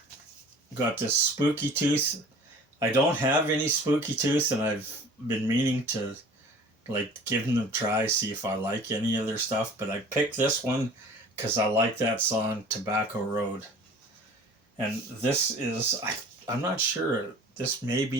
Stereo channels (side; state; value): both; normal; correlation 0.45